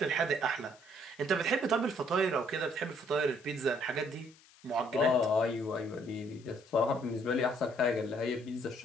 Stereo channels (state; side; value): noise; left; hiss, 26 dB below the sound